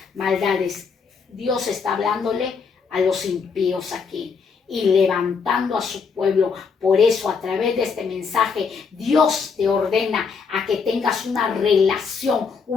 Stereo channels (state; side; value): quieter; right; 5.5 dB